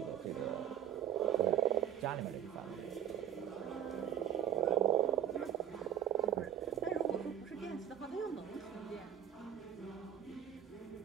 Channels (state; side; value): quieter; left; 10.2 dB